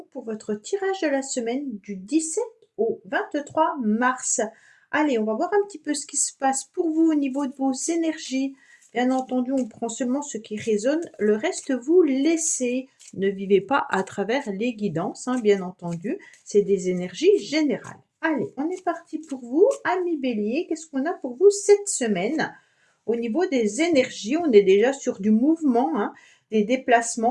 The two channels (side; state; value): both; identical; correlation 1.00